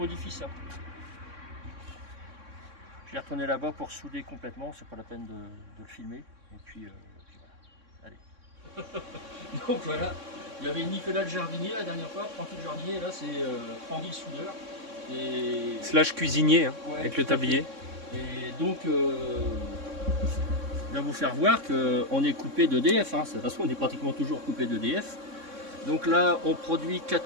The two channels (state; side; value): late; left; 3.6 ms